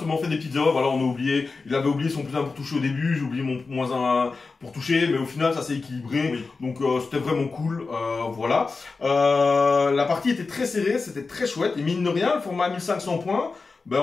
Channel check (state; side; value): quieter; right; 4.2 dB